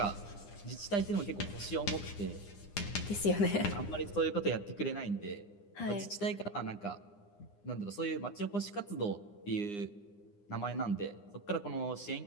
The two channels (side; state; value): right; late; 9.8 ms